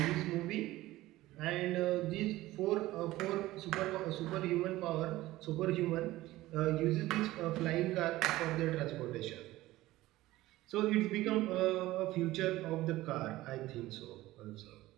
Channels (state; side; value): quieter; left; 17.1 dB